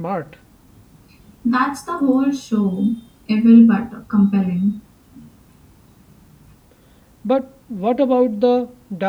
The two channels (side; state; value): both; identical; correlation 1.00